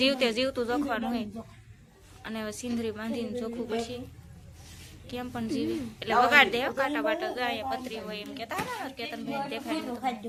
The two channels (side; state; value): both; identical; correlation 1.00